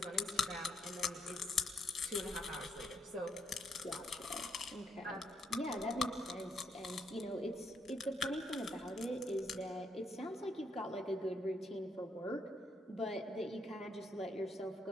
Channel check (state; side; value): normal; both; correlation 0.75